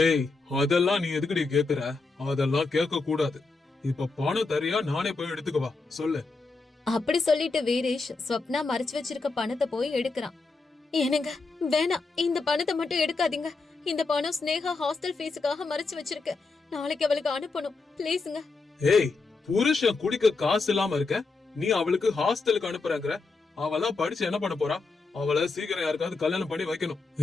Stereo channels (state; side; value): quieter; right; 4.0 dB